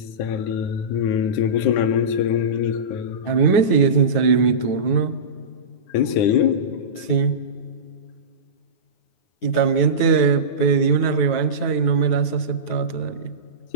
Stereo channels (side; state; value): right; late; 9.5 ms